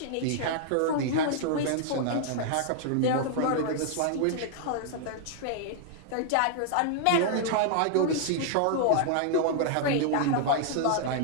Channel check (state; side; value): different; both; correlation -0.01